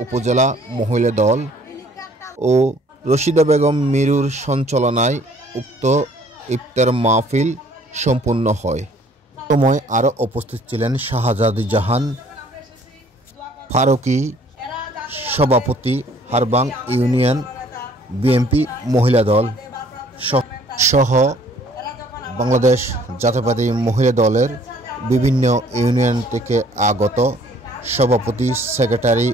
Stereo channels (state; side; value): normal; both; correlation 0.58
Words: উপজেলা মহিলা দল, ও রশিদা বেগম মিরুর সঞ্চালনায় উক্ত ইফতার মাহফিল সম্পূর্ণ হয়। সময় আরও উপস্থিত ছিলেন শাহজাদি জাহান ফারুকি, সভাপতি হারবাং ইউনিয়ন বিএনপি মহিলা দল সহ বাংলাদেশ জাতীয়তাবাদী মহিলা দলের বিভিন্ন ইউনিয়ন থেকে আগত সভাপতি, সেক্রেটারি